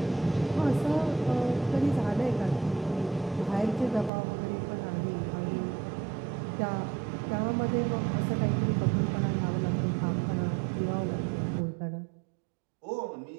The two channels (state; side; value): drops out; left; at 4.1 s